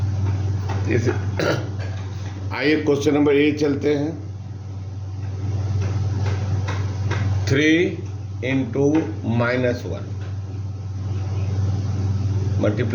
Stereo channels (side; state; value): both; identical; correlation 1.00